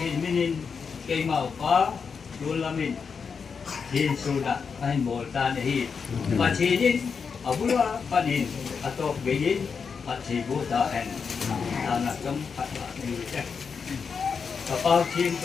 minin kemau pa dulamin, hin sudah kain boltan hi, pacinin abula panin atau begin pacin buta hen, anak keempat ni. Kapal tim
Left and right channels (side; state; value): right; quieter; 5.8 dB